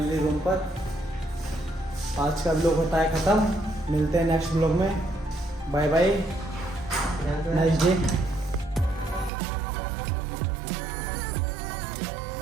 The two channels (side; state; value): left; drops out; at 9.3 s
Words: रूम पर। आज का व्लॉग होता है ख़त्म। मिलते हैं नेक्स्ट व्लॉग में। Bye bye, nice day.